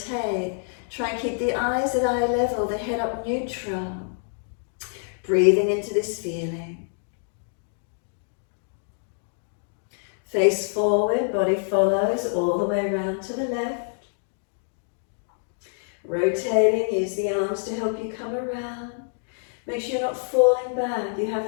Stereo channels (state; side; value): silent; right; digital silence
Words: Try and keep the eyes at eye level, the head up neutral. Breathing into this feeling. Face forward, body follows all the way around to the left. Rotating, use the arms to help you come around. Make sure you're not falling back. You